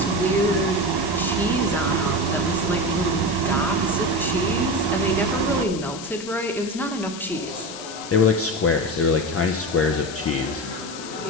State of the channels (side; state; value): left; noise; hiss, 12 dB below the sound